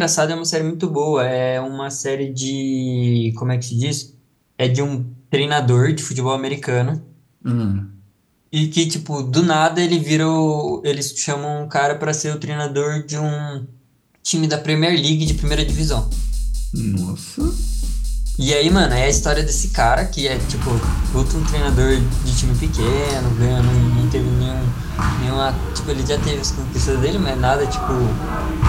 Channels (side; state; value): both; identical; correlation 1.00